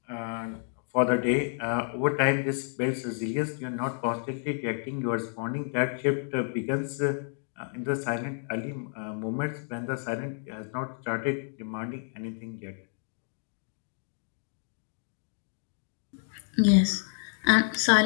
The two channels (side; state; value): right; silent; 58 dB below the other